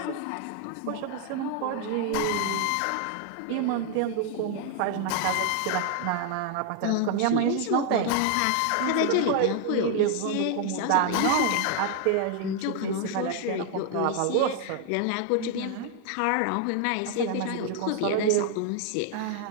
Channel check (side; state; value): both; different; correlation 0.00